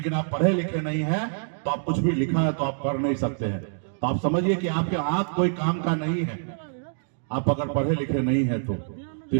आप पढ़े लिखे नहीं हैं तो आप कुछ भी लिखा है तो आप कर नहीं सकते हैं। तो आप समझिए कि आपके आंख कोई काम का नहीं है आप अगर पढ़े लिखे नहीं है तो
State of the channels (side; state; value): left; silent; digital silence